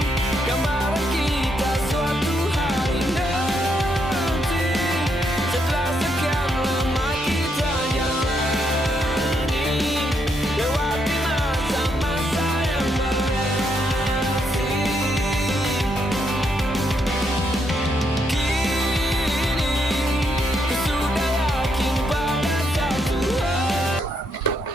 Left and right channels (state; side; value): normal; both; correlation 0.77